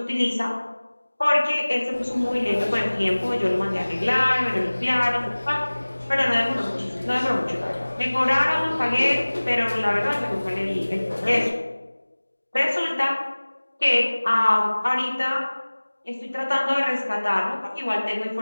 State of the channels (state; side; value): inverted; both; correlation -1.00